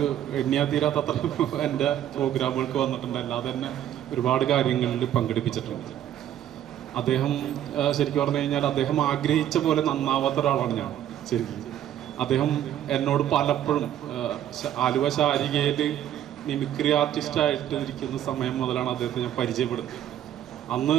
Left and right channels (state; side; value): quieter; left; 11.2 dB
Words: എണ്ണിയാ തീരാത്തത്ര എൻ്റെ പ്രോഗ്രാമുകൾക്ക് വന്നിട്ടുണ്ട്. അല്ലാതെ തന്നെ ഒരുപാട് കാര്യങ്ങളിൽ പങ്കെടുപ്പിച്ചിട്ടുണ്ട്. അദ്ദേഹം ശരിക്കും പറഞ്ഞു കഴിഞ്ഞാൽ അദ്ദേഹം ആഗ്രഹിച്ച പോലെ നന്നാവാത്ത ഒരാളാണ് ഞാൻ. ശരിക്കും അദ്ദേഹം എന്നോട് പലപ്പോഴും ആലുവ ശാരികയിൽ മിമിക്രി ആർട്ടിസ്റ്റായിട്ട് ഇരിക്കുന്ന സമയം മുതലാണ് അദ്ദേഹത്തെ ഞാൻ പരിചയപ്പെടുന്നത്.